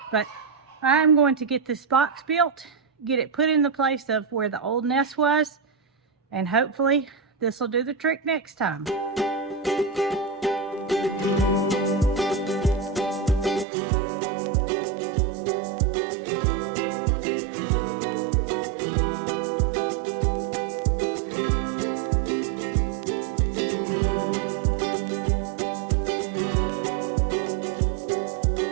But I'm going to get this box built, get it put in the place of where the old nest was, and hopefully this will do the trick next time.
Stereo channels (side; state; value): left; drops out; at 13.7 s